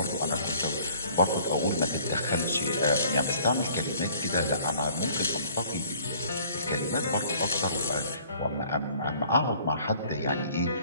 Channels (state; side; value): inverted; both; correlation -0.55